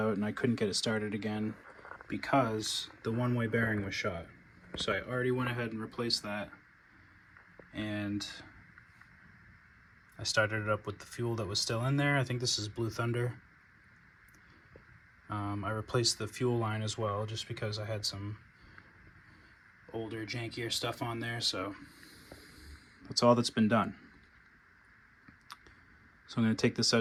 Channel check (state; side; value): identical; both; correlation 1.00